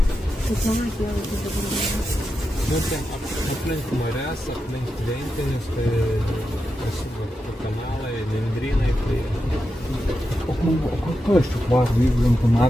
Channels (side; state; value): both; normal; correlation 0.88